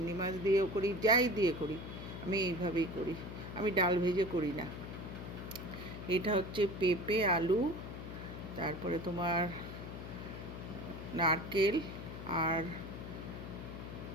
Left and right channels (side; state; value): left; noise; hum, 9 dB below the sound